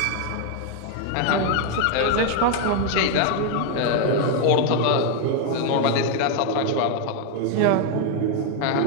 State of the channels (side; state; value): both; different; correlation 0.01